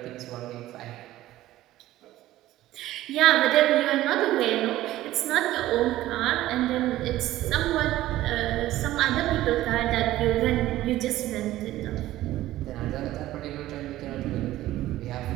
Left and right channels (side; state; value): left; quieter; 15.1 dB